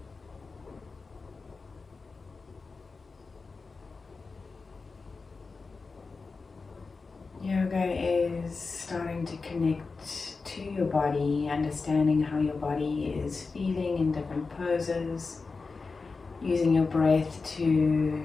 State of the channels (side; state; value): right; quieter; 4.3 dB